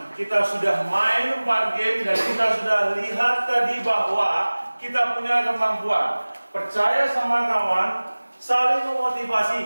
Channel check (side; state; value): both; inverted; correlation -1.00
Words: Kita sudah main 4 game dan kita sudah lihat tadi bahwa kita punya kemampuan. Percaya sama kawan, saling